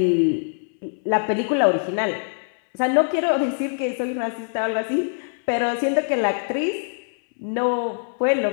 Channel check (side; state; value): right; silent; 63 dB below the other